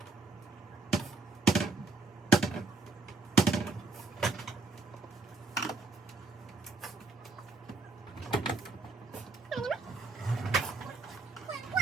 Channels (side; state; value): left; quieter; 4.0 dB